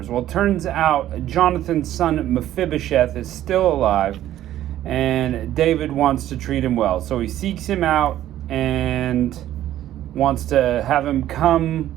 Well, it turns out Jonathan's son Mephibosheth is still alive, and David wants to treat him well. So he seeks him out and wants to have him come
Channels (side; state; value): left; quieter; 12.8 dB